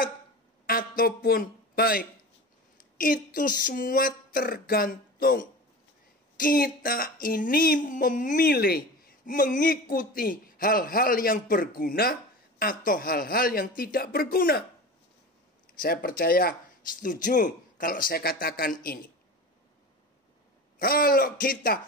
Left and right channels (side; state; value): both; normal; correlation 0.32